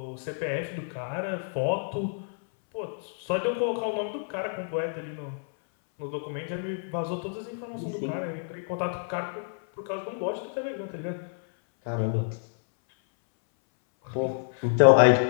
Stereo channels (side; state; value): right; silent; 59 dB below the other